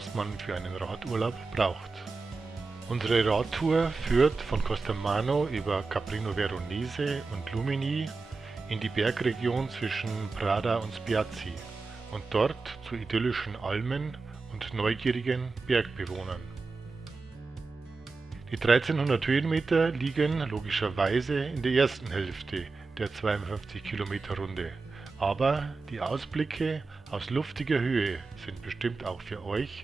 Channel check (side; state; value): left; quieter; 4.1 dB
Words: man für einen Radurlaub braucht. Unsere Radtour führt von Costermano über Caprino Veronese und Lumini in die Bergregion zwischen Prada und Spiazzi und dort zu idyllischen Almen und neugierigen Bergbewohnern. Die 1300 Höhenmeter liegen logischerweise in der ersten Hälfte der 52 Kilometer Runde, aber die Ausblicke aus luftiger Höhe sind bestimmt auch für